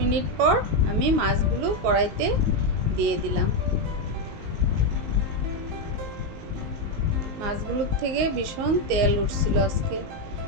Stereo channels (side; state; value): left; late; 19 ms